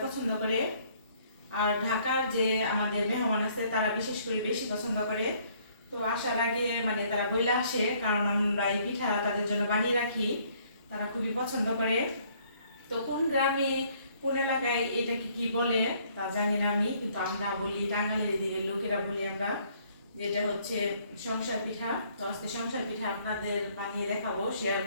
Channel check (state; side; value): inverted; both; correlation -0.63